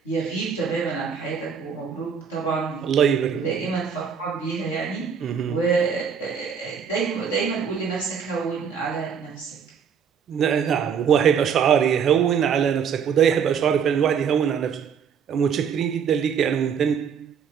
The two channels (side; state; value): left; quieter; 7.1 dB